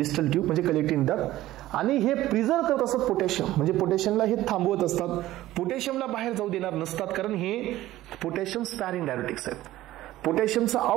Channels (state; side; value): quieter; left; 15.5 dB